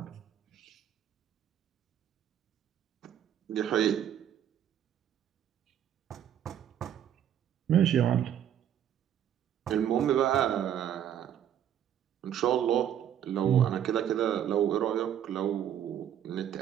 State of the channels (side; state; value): left; quieter; 10.0 dB